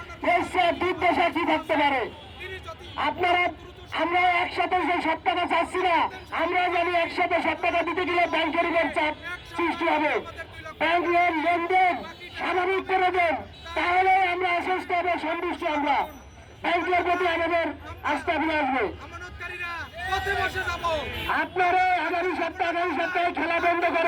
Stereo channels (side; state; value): both; identical; correlation 1.00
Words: এর চেয়ে দুর্দশা কি থাকতে পারে? আপনারা আমরা একসাথে যে 7 টাকা চাচ্ছি না, আমরা জানি একসাথে 7 টাকা দিতে গেলে ব্যাংকের উপর চাপ সৃষ্টি হবে। ব্যাংক লেনদেন স্বাভাবিক করে দেন, তাহলে আমরা আশ্বস্ত হবে, সন্তুষ্ট আমরা ব্যাংকের প্রতি আমাদের আস্থা ফিরে আসবে। আপনারা আগামী সপ্তাহে খেলা বন্ধ